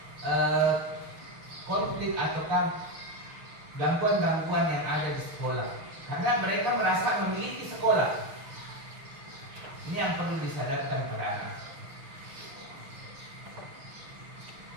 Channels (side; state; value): left; late; 6.3 ms